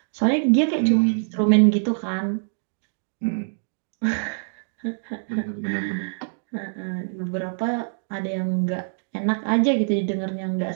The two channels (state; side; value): silent; left; digital silence